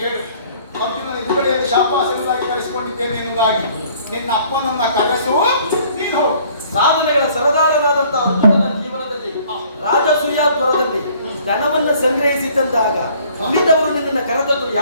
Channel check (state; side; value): inverted; both; correlation -0.57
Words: ಹೇಳು, ಅರ್ಜುನನ ಎದುರುಗಡೆಯಲ್ಲಿ ಶಾಬಾಷ್ ಎಂಬುದಾಗಿ ಕರೆಸಿಕೊಂಡಿದ್ದೇನೆ ಎನ್ನುವುದಾಗಿ. ನಿನ್ನ ಅಪ್ಪನನ್ನ ಕರೆಸು, ನೀನು ಹೋಗು. ಸಾಧನೆಗಳ ಸರದಾರನಾದಂತಹ ಅರ್ಜುನನ ಜೀವನದಲ್ಲಿ ರಾಜಸೂಯಾಪುರದಲ್ಲಿ ಧನವನ್ನು ಸಂಗ್ರಹಿಸಿದ್ದಂದಾಗ ಉಳಿದವರು ನಿನ್ನನ್ನು ಕರೆದದ್ದು